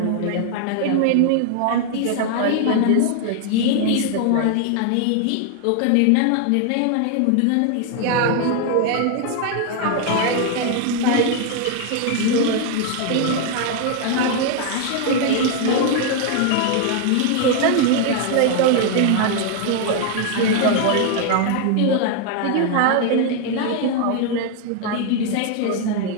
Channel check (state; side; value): different; both; correlation 0.00